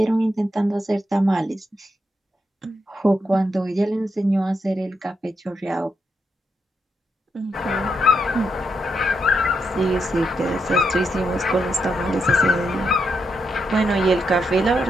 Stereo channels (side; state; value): both; normal; correlation 0.81